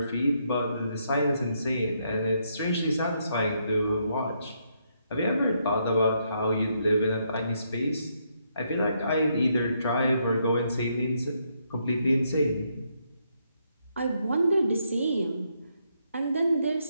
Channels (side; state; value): both; inverted; correlation -0.76